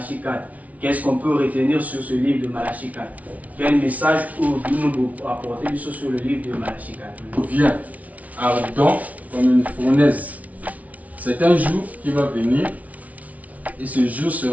4. Qu'est-ce qu'on peut retenir sur ce livre de Malachie 4? Quel message nous apporter sur le livre de Malachie 4? Vient ardent comme une fournaise. C'est un jour qui va venir et ce jour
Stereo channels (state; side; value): late; left; 0.070 ms